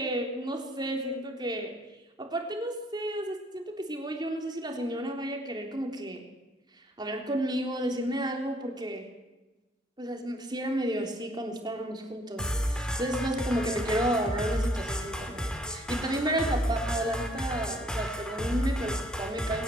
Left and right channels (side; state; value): both; normal; correlation 0.62